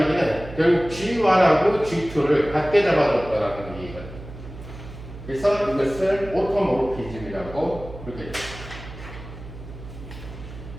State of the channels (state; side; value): noise; right; hum, 14 dB below the sound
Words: 얘기는 결국 G1하고 G2를 같게 잡아줬다라는 얘기거든요. 그래서 이것을 오토모르피즘이라고 부르겠죠.